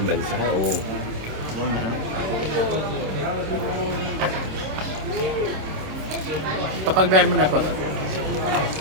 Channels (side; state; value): left; late; 26 ms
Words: bansa. Oo. Kapag beer mo na po.